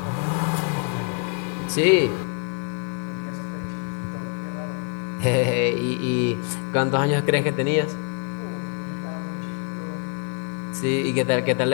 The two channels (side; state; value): right; quieter; 36.7 dB